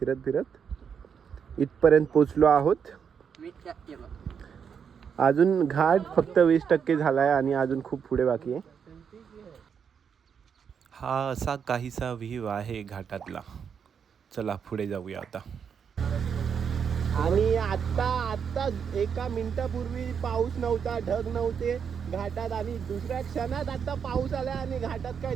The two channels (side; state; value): left; quieter; 7.1 dB